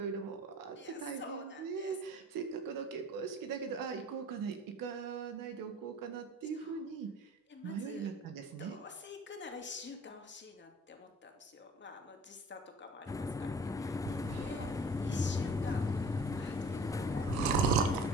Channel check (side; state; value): both; normal; correlation 0.46